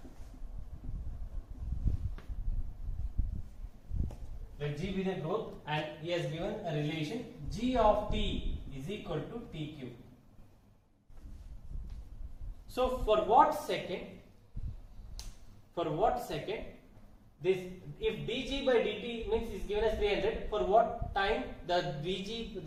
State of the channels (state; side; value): identical; both; correlation 1.00